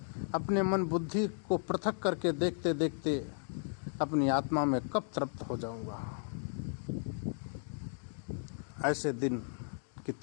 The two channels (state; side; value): silent; right; digital silence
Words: अपने मन बुद्धि को पृथक करके देखते देखते अपनी आत्मा में कब तृप्त हो जाऊंगा? ऐसे दिन की